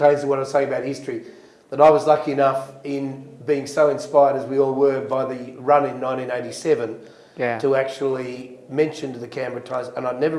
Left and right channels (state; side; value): identical; both; correlation 1.00